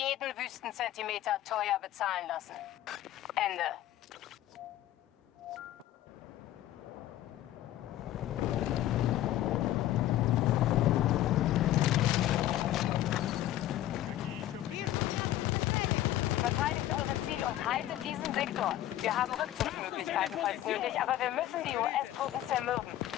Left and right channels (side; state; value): right; quieter; 13.6 dB